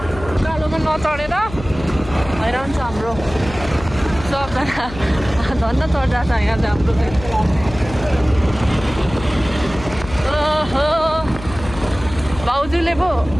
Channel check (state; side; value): noise; left; hum, 13 dB below the sound